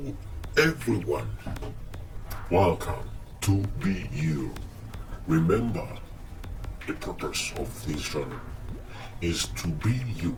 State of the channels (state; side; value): identical; both; correlation 1.00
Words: everyone. Welcome to Be You. Remember, the purpose of this channel is to be you.